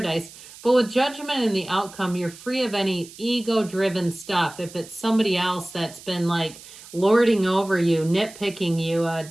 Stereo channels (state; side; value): noise; right; hiss, 18 dB below the sound